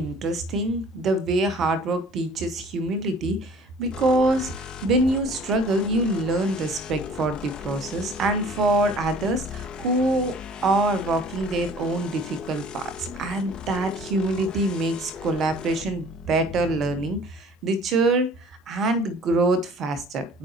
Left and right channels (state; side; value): normal; both; correlation 0.50